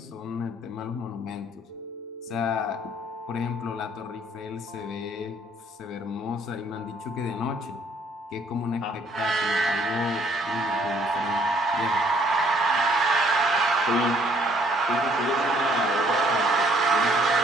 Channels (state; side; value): normal; both; correlation 0.63